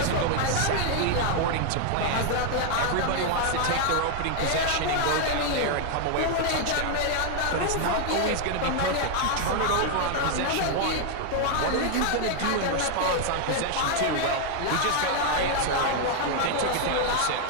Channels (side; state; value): both; different; correlation 0.00